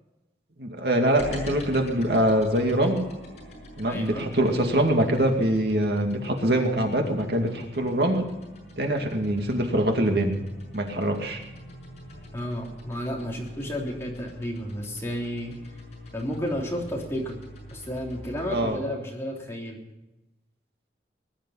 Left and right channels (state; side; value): normal; both; correlation 0.42